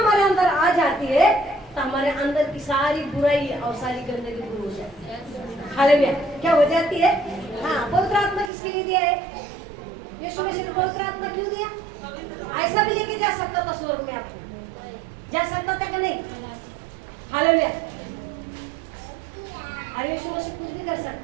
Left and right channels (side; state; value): left; drops out; at 8.5 s